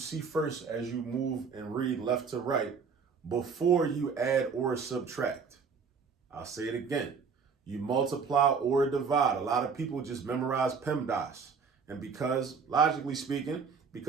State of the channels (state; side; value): quieter; left; 5.6 dB